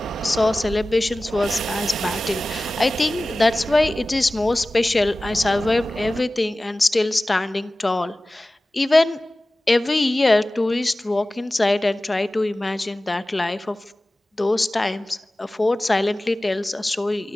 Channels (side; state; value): both; normal; correlation 0.97